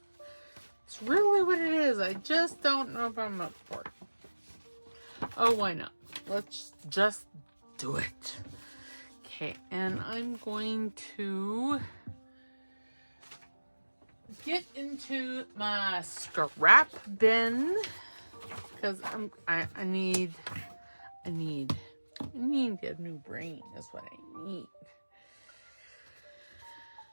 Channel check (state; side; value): inverted; both; correlation -1.00